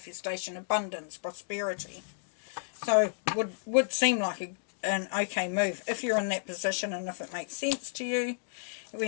abundance, prosperity. So would seem like an okay move if you're in that position and if it makes sense to you.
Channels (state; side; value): silent; right; digital silence